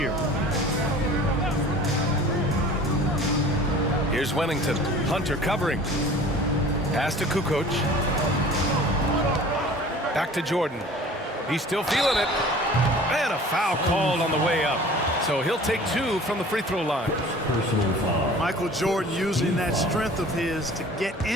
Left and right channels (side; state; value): both; normal; correlation 0.45